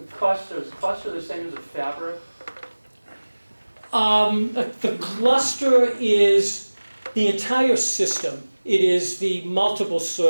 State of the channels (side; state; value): both; inverted; correlation -1.00